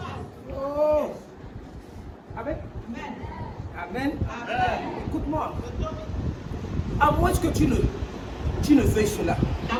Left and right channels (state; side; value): identical; both; correlation 1.00